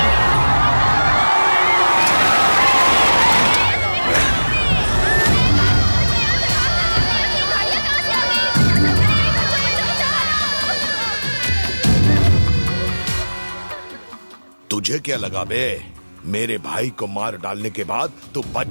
तुझे क्या लगा बे? मेरे भाई को मार डालने के बाद तू बच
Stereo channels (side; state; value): both; inverted; correlation -1.00